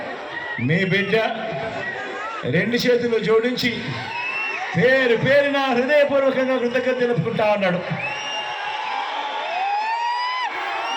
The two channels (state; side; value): identical; both; correlation 1.00